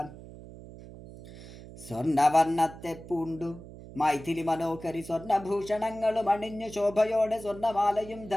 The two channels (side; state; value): right; noise; hum, 16 dB below the sound